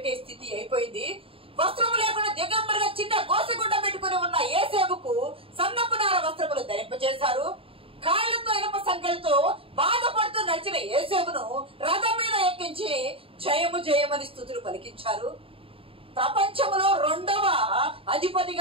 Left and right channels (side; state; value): left; late; 0.27 ms